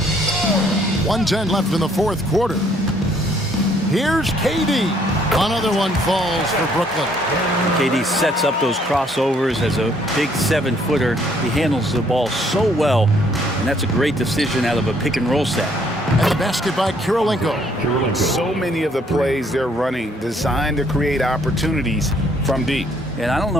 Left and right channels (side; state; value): both; normal; correlation 0.65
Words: .110 left in the fourth quarter. Here's KD. Another one falls for Brooklyn. KD sets up those crossovers as a big 7-footer. He handles the ball so well, and that's a great decision out of a pick-and-roll set. And the basket by Kirilenko. So many of the plays they're running designed to create opportunities from deep. And I don't